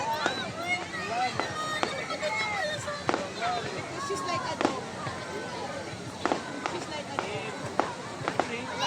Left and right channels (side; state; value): both; identical; correlation 1.00